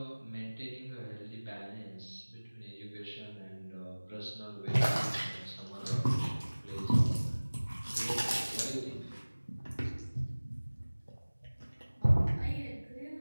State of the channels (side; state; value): both; inverted; correlation -1.00